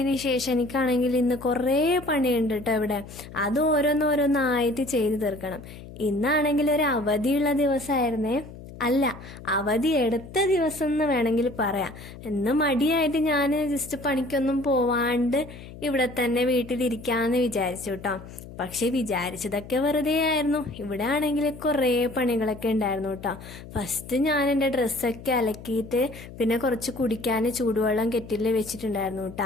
ശേഷം എനിക്കാണെങ്കിൽ ഇന്ന് കുറേ പണിയുണ്ട് കേട്ടോ ഇവിടെ. അത് ഓരോന്നോരോന്നായിട്ട് ചെയ്തു തീർക്കണം. ഇന്നാണെങ്കിൽ ഒരു അവധിയുള്ള ദിവസമായിരുന്നേ. അല്ല, അവധി എടുത്ത ദിവസം എന്ന് വേണമെങ്കിൽ പറയാം. ഇന്ന് മടിയായിട്ട് ഞാൻ ജസ്റ്റ് പണിക്കൊന്നും പോവാണ്ട് ഇവിടെ തന്നെ വീട്ടിലിരിക്കാന്ന് വിചാരിച്ചു കേട്ടോ. പക്ഷെ വിചാരിച്ചതൊക്കെ വെറുതെ ആയിരുന്നു. ഇവിടെ ആണെങ്കിൽ കുറേ പണികളൊക്കെ ഉണ്ടായിരുന്നു കേട്ടോ. ഫസ്റ്റ് ഞാൻ എൻ്റെ ഡ്രസ്സൊക്കെ അലക്കിയിട്ട് പിന്നെ കുറച്ച് കുടിക്കാൻ ചൂടുവെള്ളം കെറ്റിൽ വെച്ചിട്ടുണ്ടായിരുന്നു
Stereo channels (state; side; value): noise; left; hum, 15 dB below the sound